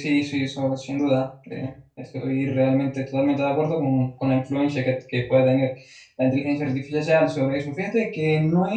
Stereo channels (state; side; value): identical; both; correlation 1.00